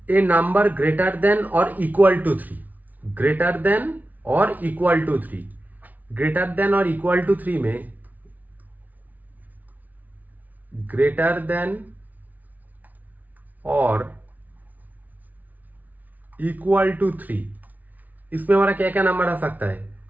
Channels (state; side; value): late; left; 0.077 ms